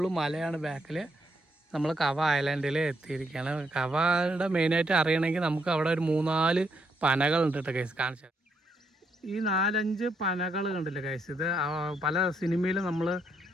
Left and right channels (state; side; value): normal; both; correlation 0.76